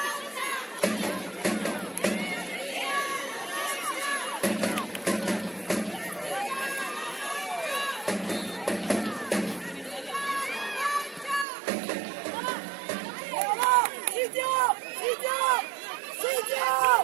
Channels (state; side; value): drops out; left; at 11.5 s